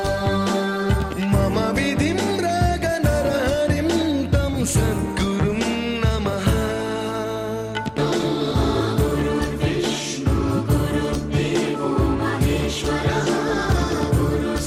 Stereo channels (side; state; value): both; identical; correlation 1.00